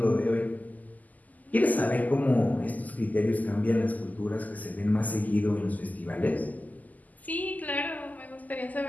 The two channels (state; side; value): late; right; 0.080 ms